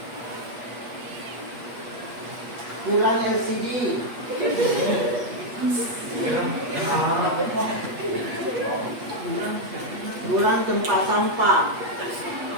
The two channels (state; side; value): late; left; 8.3 ms